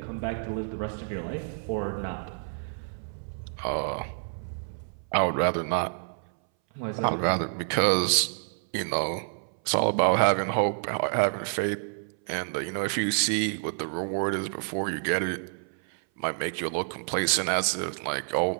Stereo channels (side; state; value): left; silent; 59 dB below the other